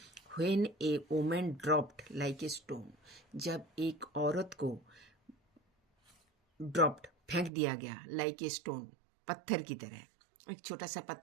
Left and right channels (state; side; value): drops out; left; at 7.5 s